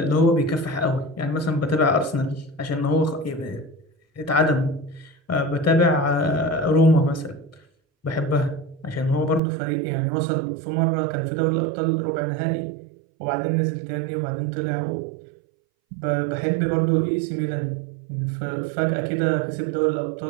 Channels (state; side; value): drops out; left; at 9.4 s